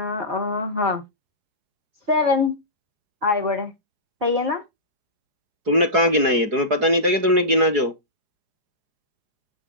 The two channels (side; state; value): left; late; 4.7 ms